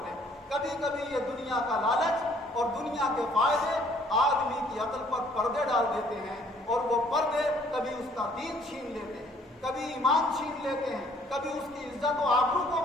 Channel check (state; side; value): normal; both; correlation 0.61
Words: لیں۔ کبھی کبھی یہ دنیا کا لالچ اور دنیا کے فائدے آدمی کی عقل پر پردے ڈال دیتے ہیں، اور وہ پردے کبھی اس کا دین چھین لیتے ہیں، کبھی ایمان چھین لیتے ہیں، کبھی اس کی عزت و آبرو کو